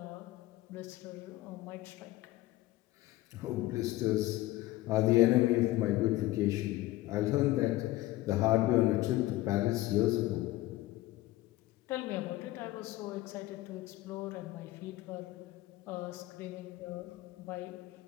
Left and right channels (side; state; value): right; quieter; 17.2 dB